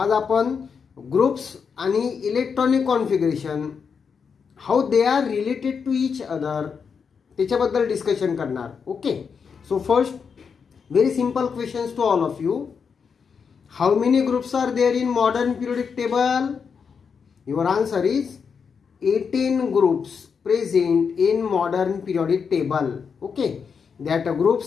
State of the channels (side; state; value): right; quieter; 6.1 dB